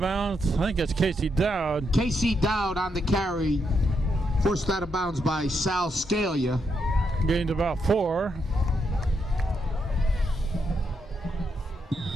bounds. I think that's Casey Dowd. Casey Dowd on the carry, forced out of bounds by Sal Scalia. Gained about 4.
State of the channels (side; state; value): both; normal; correlation 0.80